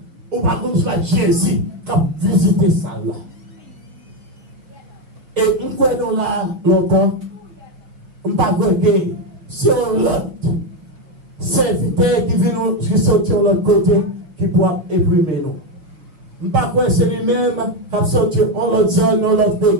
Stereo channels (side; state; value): left; late; 6.4 ms